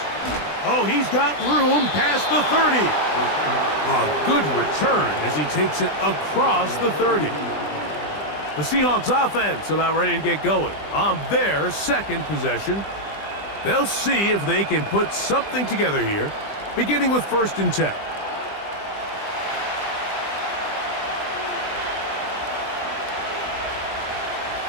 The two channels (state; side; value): late; right; 20 ms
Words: Oh, he's got room past the 30. A good return as he takes it across the 30. The Seahawks offense about ready to get going on their 2nd possession. They'll see if they can put something together here, beginning with 1st and 10.